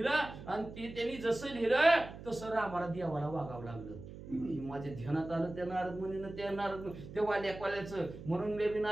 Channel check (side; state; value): right; noise; hum, 13 dB below the sound